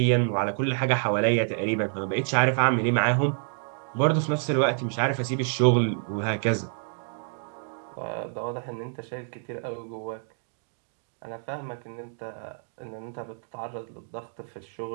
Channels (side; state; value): left; silent; 59 dB below the other